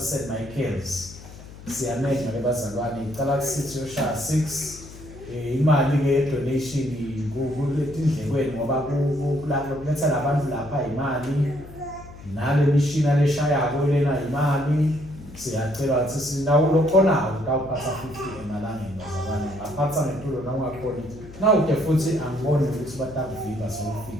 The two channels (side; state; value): left; noise; hum, 17 dB below the sound